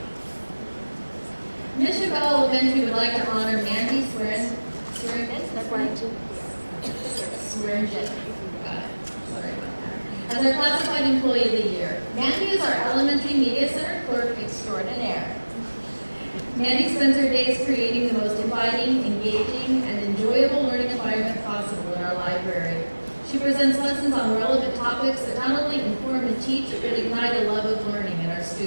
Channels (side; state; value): both; inverted; correlation -1.00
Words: Mission Bell Elementary would like to honor Mandy Swearingen. Sorry about that. As our classified employee of the year. Mandy is our elementary media center clerk extraordinaire. Mandy spends her days creating the most inviting, engaging, and enjoyable learning environment possible in our library. She presents lessons on relevant topics that not only inform and teach, but ignite a love of learning in our